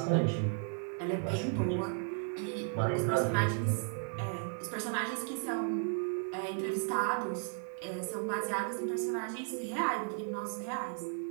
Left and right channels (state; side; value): silent; left; 55 dB below the other